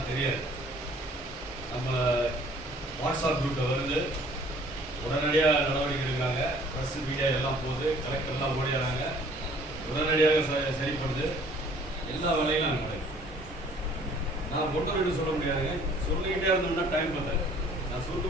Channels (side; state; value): both; normal; correlation 0.56